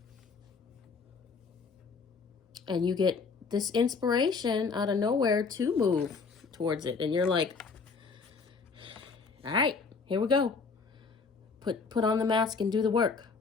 And you get this inspiration out of nowhere to move towards it. And you're like, all right, here we go. Put on the mask and do the work.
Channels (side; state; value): right; quieter; 4.9 dB